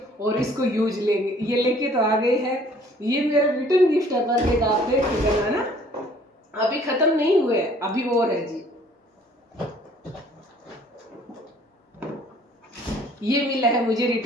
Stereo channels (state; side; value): normal; both; correlation 0.56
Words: और इसको यूज लेंगे। ये लेके तो आ गए हैं। ये मेरा रिटर्न गिफ्ट है बर्थडे का, आप देख के करना ना, अभी खत्म नहीं हुए, अभी और है जी। ये मिला है मुझे